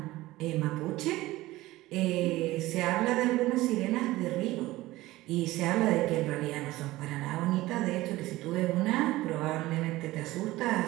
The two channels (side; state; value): left; quieter; 17.9 dB